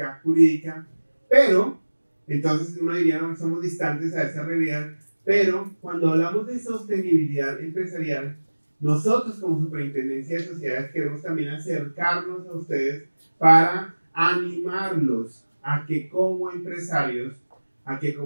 jurídica. Pero, entonces uno diría, no somos distantes a esa realidad, pero cuando hablamos de sostenibilidad empresarial, nosotros como Superintendencia de Sociedades queremos también acercarnos a ustedes para animarlos a que como empresarios, a que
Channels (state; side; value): inverted; both; correlation -1.00